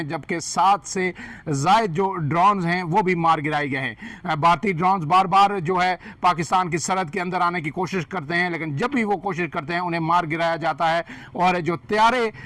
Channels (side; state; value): both; identical; correlation 1.00